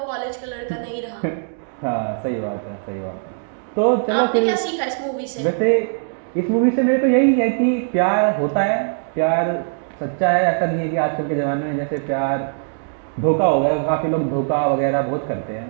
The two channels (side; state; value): left; silent; digital silence